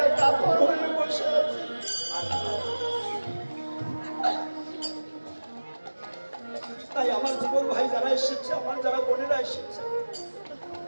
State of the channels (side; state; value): both; inverted; correlation -1.00